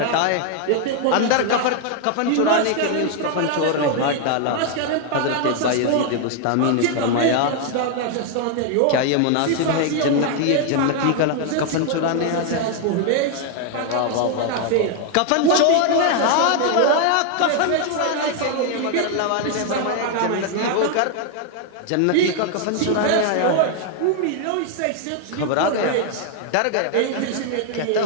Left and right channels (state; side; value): different; both; correlation 0.00